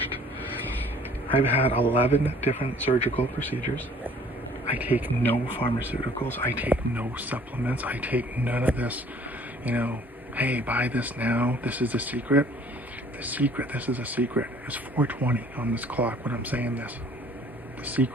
I've had 11 different surgical procedures. I take no pharmaceuticals. I take no supplements. I take none of this, hey, buy this now. This is the secret. This is a secret. It's 4:20 on this clock when I'm saying this. The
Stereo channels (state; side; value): normal; both; correlation 0.55